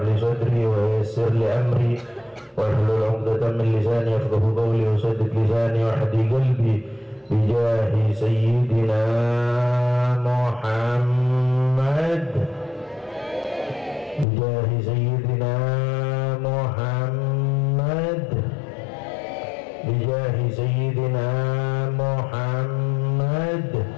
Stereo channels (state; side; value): drops out; right; at 14.2 s